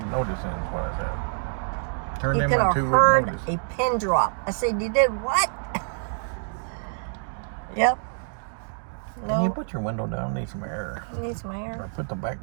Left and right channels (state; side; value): silent; left; digital silence